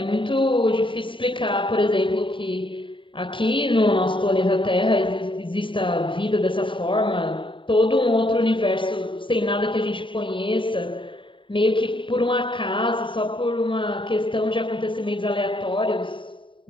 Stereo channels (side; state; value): right; late; 0.25 ms